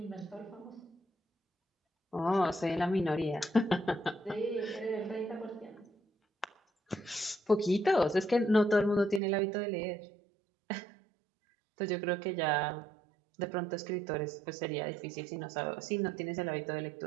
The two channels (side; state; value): left; drops out; at 9.2 s